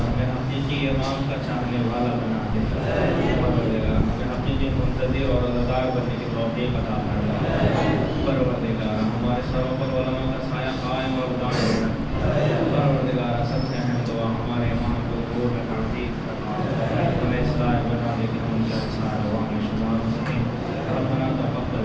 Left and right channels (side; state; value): both; identical; correlation 1.00